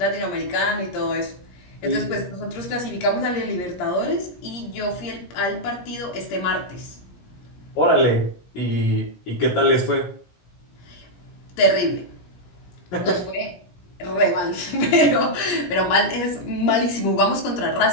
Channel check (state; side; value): late; right; 17 ms